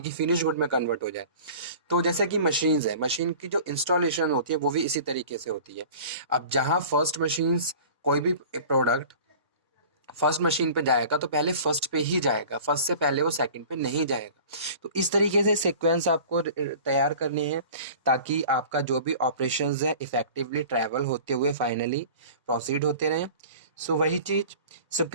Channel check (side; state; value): both; inverted; correlation -0.42